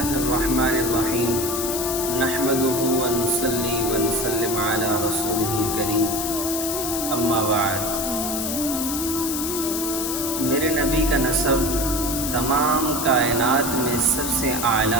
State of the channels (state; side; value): noise; left; hiss, 3 dB below the sound